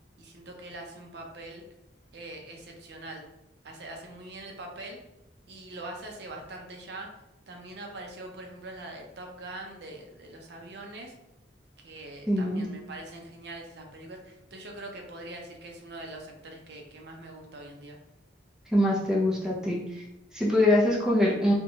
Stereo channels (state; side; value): normal; both; correlation 0.71